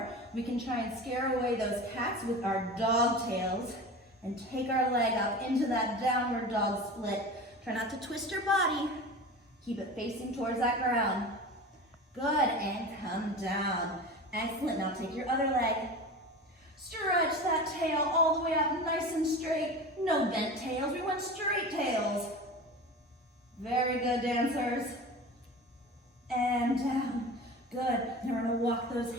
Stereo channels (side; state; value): both; normal; correlation 0.32